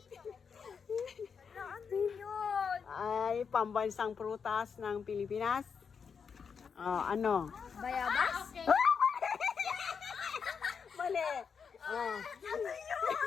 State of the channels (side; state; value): right; quieter; 6.2 dB